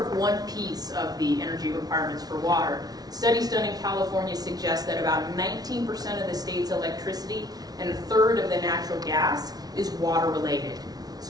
of one piece of the energy requirements for water. Studies done in California suggest that about 19% of the state's electricity and a third of the natural gas is water related.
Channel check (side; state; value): left; late; 0.19 ms